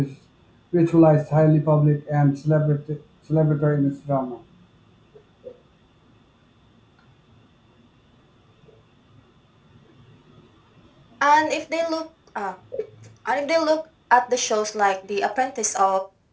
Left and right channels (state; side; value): identical; both; correlation 1.00